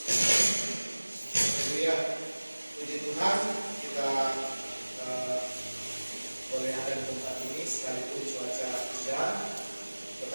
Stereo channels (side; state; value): both; inverted; correlation -1.00